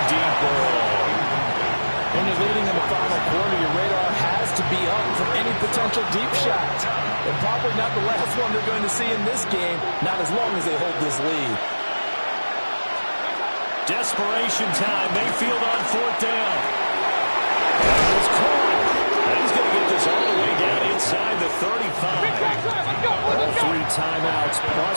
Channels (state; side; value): inverted; both; correlation -1.00